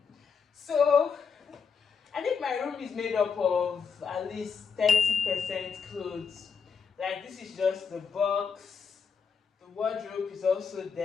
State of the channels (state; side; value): quieter; right; 6.0 dB